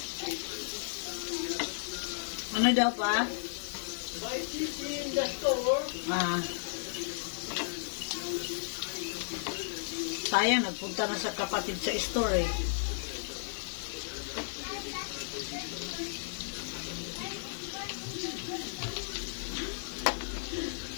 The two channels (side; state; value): right; silent; digital silence